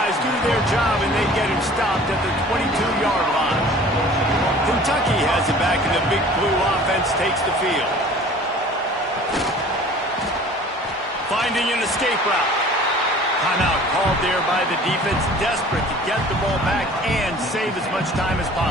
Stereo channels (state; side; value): normal; both; correlation 0.47